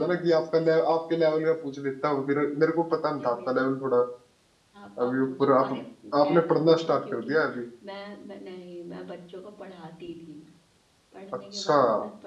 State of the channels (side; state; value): both; identical; correlation 1.00